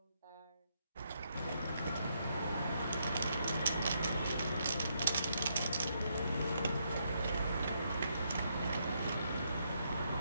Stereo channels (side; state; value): both; inverted; correlation -0.76